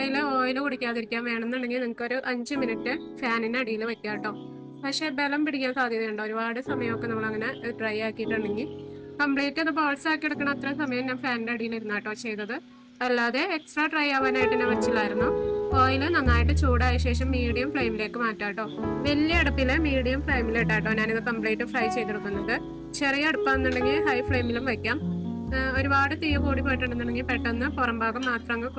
ഓയിൽ കുടിക്കാതിരിക്കാൻ വേണമെന്നുണ്ടെങ്കിൽ നിങ്ങൾക്കൊരു 5 മിനിറ്റ് ഫാനിന് അടിയിൽ വെക്കാം കേട്ടോ. പക്ഷേ ബലം പിടിക്കാൻ സാധ്യതയുണ്ടോ. ഒരുപാട് സമയമൊക്കെ നമ്മളങ്ങനെ ഡ്രൈ ആക്കിയിട്ടുണ്ടെങ്കിൽ കംപ്ലീറ്റ് അത് ബോൾസ് ആക്കി എടുക്കണം. അത്രയും സമയം ഞാൻ ഫാനിൻ്റെ അടിയിൽ ഇരുന്നാട്ടോ ചെയ്തത്. അല്ലാതെ എക്സ്ട്രാ ഡ്രൈ ആവാനായിട്ട് ഞാൻ വെച്ചില്ലായിരുന്നു. ഓയിൽ നന്നായിട്ട് ചൂടായ ശേഷം മീഡിയം ഫ്ലെയിമിലേക്ക് മാറ്റാം കേട്ടോ. വലിയ അടുപ്പിൽ മീഡിയം ഫ്ലെയിമിലിട്ടാട്ടോ ഞാനിത് കംപ്ലീറ്റ് ഫ്രൈ ചെയ്തെടുക്കുന്നത്. ചെറിയ അടുപ്പാണെന്നുണ്ടെങ്കിൽ ഹൈ ഫ്ലെയിമിലും വയ്ക്കാം. ഒരുപാട് തീ കൂടി പോയിട്ടുണ്ടെന്നുണ്ടെങ്കിൽ പെട്ടെന്ന് പുറം ഭാഗം മാത്രം അങ്ങ്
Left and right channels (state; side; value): identical; both; correlation 1.00